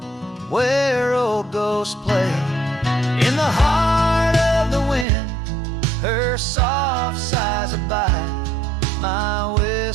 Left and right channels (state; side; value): drops out; left; at 5.1 s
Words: where old ghosts play. In the heart of the wind, Her soft sighs abide my